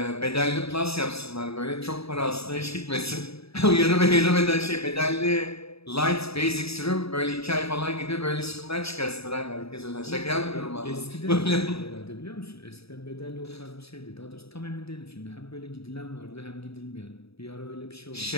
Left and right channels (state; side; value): late; right; 0.77 ms